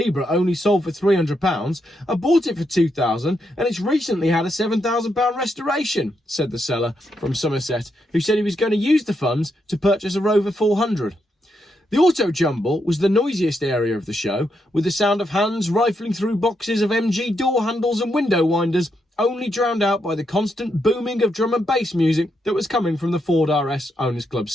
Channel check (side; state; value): both; normal; correlation 0.81